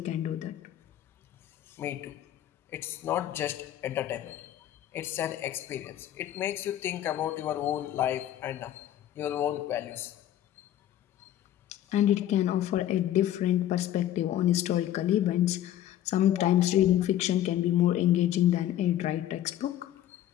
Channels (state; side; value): quieter; right; 12.2 dB